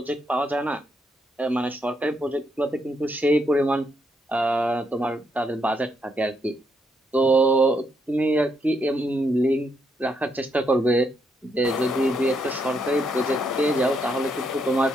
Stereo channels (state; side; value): normal; both; correlation 0.77